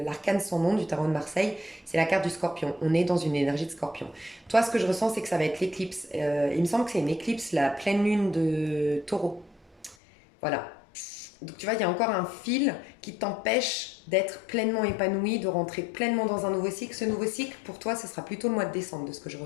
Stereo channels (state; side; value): drops out; right; at 10.0 s